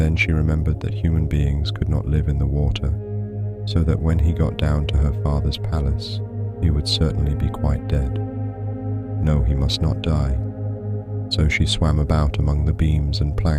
she remembered that human beings could not live in the water, so that when he got down to her father's palace, he would certainly be quite dead. No, he must not die. So she swam about among the beams and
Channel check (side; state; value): both; identical; correlation 1.00